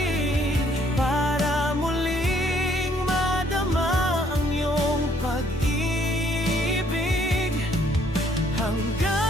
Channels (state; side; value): normal; both; correlation 0.65